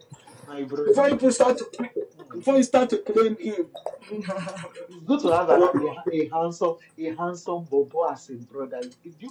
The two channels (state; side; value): identical; both; correlation 1.00